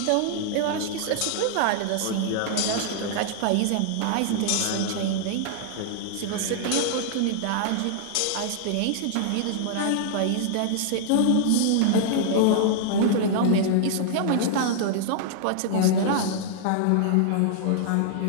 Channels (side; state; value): both; different; correlation -0.01